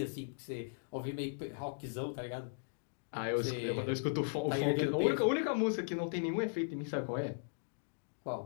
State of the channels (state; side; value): silent; right; digital silence